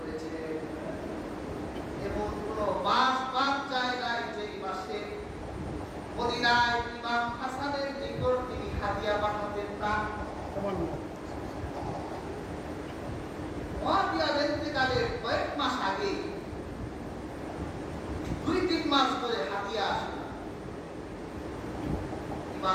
এবং কোনো মাস বাদ যায় নাই যেই মাসে মদিনায় ইমাম হাসানের নিকট তিনি হাদিয়া পাঠাতেন না। মুয়াবিয়ার ইন্তেকালের কয়েক মাস আগে 2-3 মাস ধরে হাদিয়া আসে না।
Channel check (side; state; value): both; identical; correlation 1.00